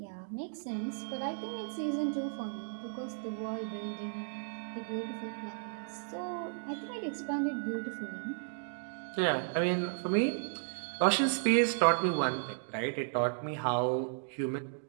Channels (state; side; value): silent; left; digital silence